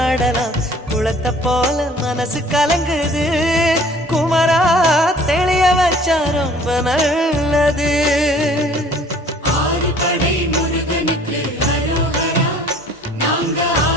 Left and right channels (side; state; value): both; normal; correlation 0.53